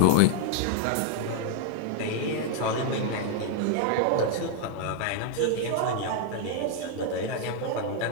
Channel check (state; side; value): different; both; correlation 0.00